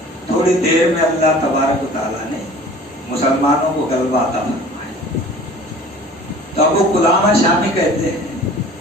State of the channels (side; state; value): both; normal; correlation 0.45